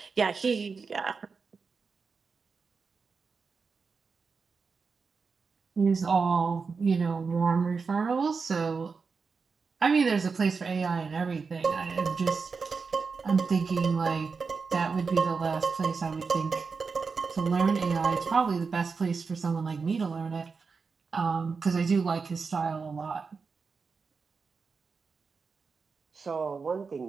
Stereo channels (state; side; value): quieter; left; 5.0 dB